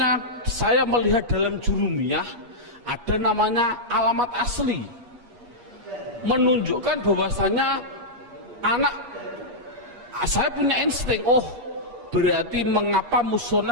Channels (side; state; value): left; late; 8.4 ms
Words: saya melihat dalam jurumiyah ada namanya alamat asli, menunjukkan bahwasanya saya punya insting, berarti mengapa